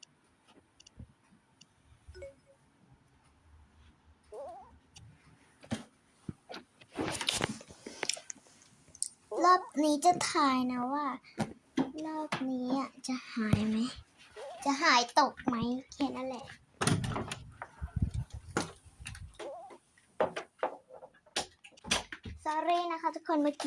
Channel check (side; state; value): both; identical; correlation 1.00